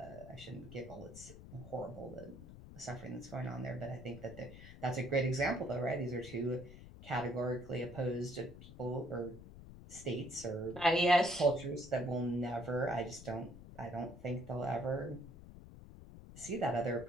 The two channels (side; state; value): left; noise; rumble, 15 dB below the sound